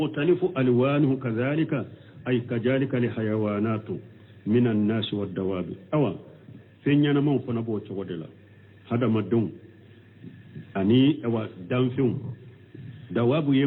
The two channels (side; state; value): both; identical; correlation 1.00